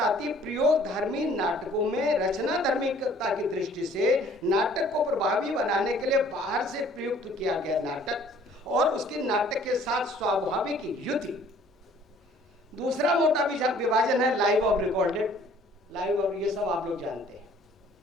है प्रयोग धर्मी नाटकों में रचना धर्मिकता की दृष्टि से नाटक को प्रभावी बनाने के लिए बाहर से प्रयुक्त किया गया नाटक और उसकी नाटक के साथ स्वाभाविक युति। दूसरा मोटा विभाजन है लाइव और रिकॉर्डेड। लाइव और ये सब आप लोग जानते हैं।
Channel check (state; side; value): normal; both; correlation 0.56